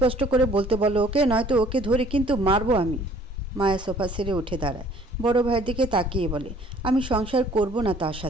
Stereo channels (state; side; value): normal; both; correlation 0.56